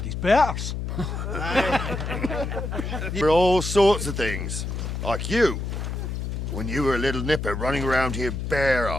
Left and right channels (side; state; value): left; noise; hum, 4 dB below the sound